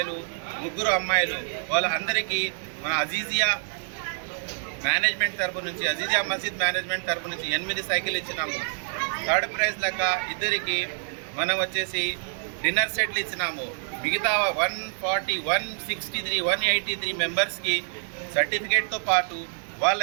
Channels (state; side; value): silent; left; digital silence